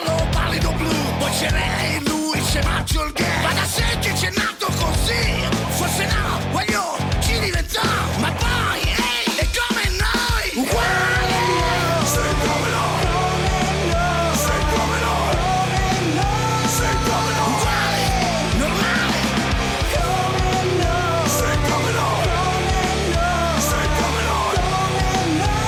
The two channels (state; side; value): identical; both; correlation 1.00